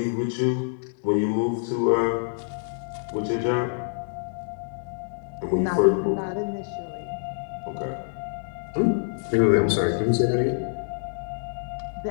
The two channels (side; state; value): right; silent; digital silence